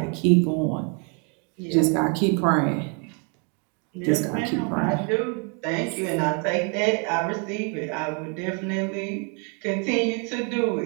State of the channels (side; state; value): left; quieter; 37.2 dB